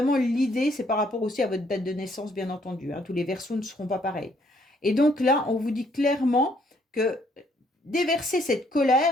l'idée, c'est par rapport aussi à votre date de naissance, bien entendu, hein. Tous les Verseaux ne seront pas pareils. Et donc là, on vous dit clairement que déverser cette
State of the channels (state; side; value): normal; both; correlation 0.67